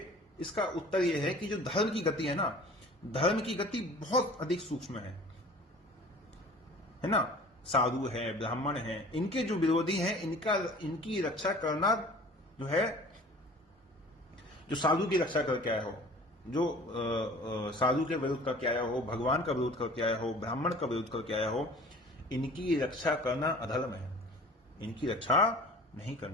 इसका उत्तर यह है कि जो धर्म की गति है ना, धर्म की गति बहुत अधिक सूक्ष्म है ना। साधु है, ब्राह्मण है, इनके जो विरोधी हैं, इनकी रक्षा करना जो है, जो साधु की रक्षा करके आया हो, जो साधु के विरोध करके आया हो, भगवान का विरोध करके आया हो, ब्राह्मण का विरोध करके आया हो, इनकी रक्षा करना अधर्म है। इनकी रक्षा नहीं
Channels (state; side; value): normal; both; correlation 0.45